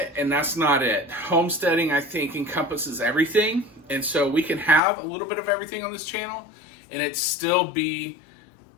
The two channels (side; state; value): right; drops out; at 4.8 s